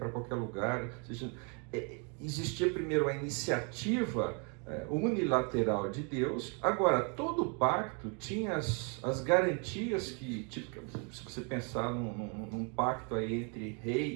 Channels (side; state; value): left; quieter; 36.5 dB